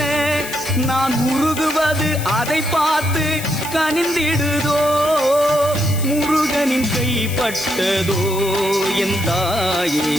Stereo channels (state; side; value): noise; left; hiss, 11 dB below the sound